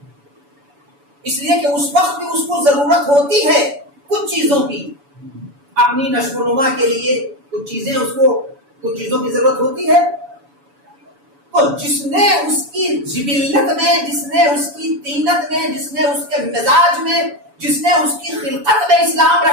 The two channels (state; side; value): late; left; 7.0 ms